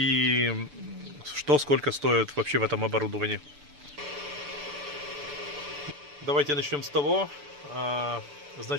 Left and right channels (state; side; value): late; left; 6.9 ms